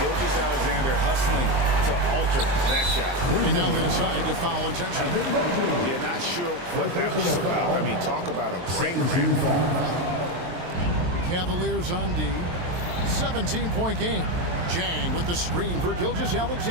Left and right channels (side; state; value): left; late; 23 ms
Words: hustling to alter that shot. And now they decide to foul intentionally. Yeah, not sure what that was about. I mean, talk about a brain cramp. Cavaliers on D. 17-point game. Jang with the screen for